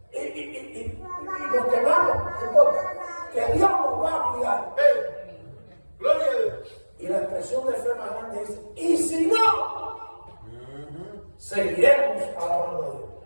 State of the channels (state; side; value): inverted; both; correlation -1.00